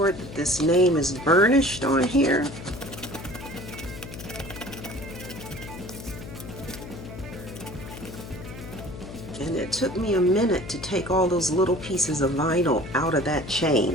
that this name is burnished on here. And it took me a minute to take all those little pieces of vinyl out of that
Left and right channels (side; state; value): left; noise; hum, 12 dB below the sound